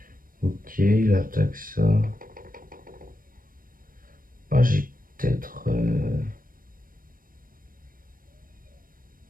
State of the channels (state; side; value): late; left; 0.41 ms